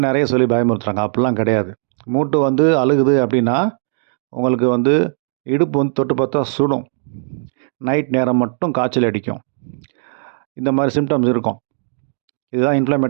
நிறைய சொல்லி பயமுறுத்துறாங்க. அப்படிலாம் கிடையாது. மூட்டு வந்து அழுகுது அப்படின்னா உங்களுக்கு வந்து இடுப்பு வந்து தொட்டு பார்த்தா சுடும், நைட் நேரம் மட்டும் காய்ச்சல் அடிக்கும், இந்த மாதிரி சிம்டம்ஸ் இருக்கும். இதுதான்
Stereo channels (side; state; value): left; silent; 67 dB below the other